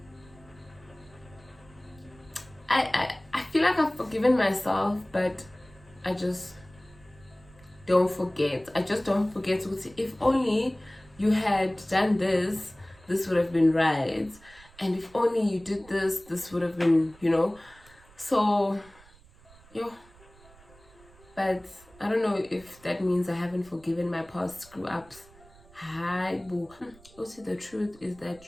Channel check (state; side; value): noise; right; rumble, 25 dB below the sound